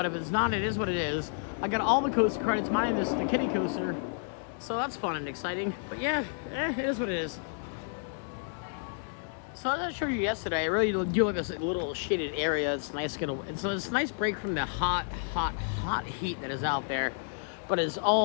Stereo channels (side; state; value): right; silent; digital silence